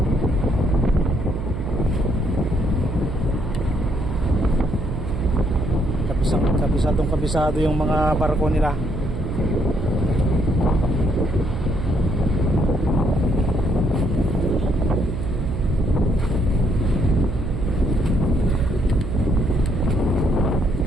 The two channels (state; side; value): noise; right; hum, 5 dB below the sound